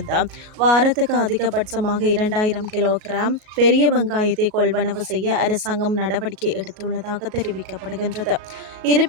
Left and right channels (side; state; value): left; late; 38 ms